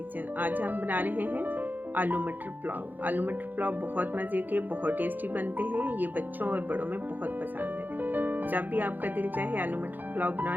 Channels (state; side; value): late; left; 0.086 ms